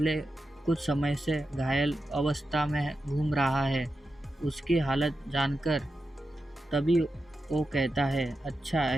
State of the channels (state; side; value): normal; both; correlation 0.90